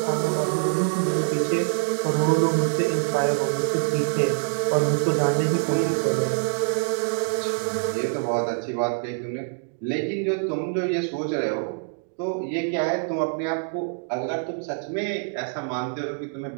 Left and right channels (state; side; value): silent; left; digital silence